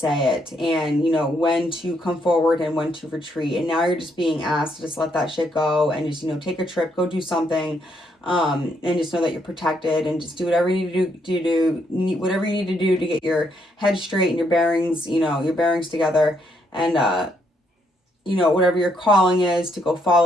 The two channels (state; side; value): normal; both; correlation 0.74